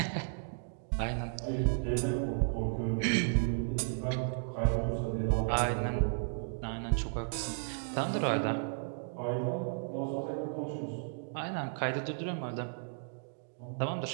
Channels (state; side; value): silent; left; digital silence